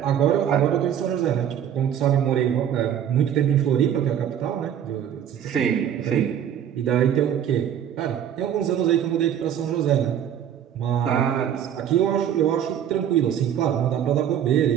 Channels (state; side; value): quieter; left; 9.6 dB